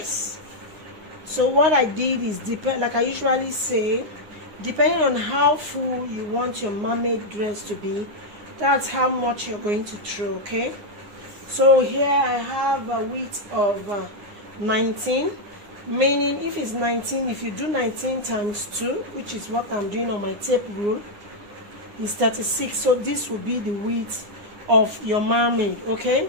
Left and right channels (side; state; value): left; late; 9.7 ms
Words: So what I did is, like I usually say, depending on how full you want your mermaid dress to be, that's how much you're going to throw. Okay, so here I have a width of 19, meaning if it's 19, if you do 19 times 2, which is what I'm doing on my tape rule, is 36. So this will be the width of your mermaid. Okay,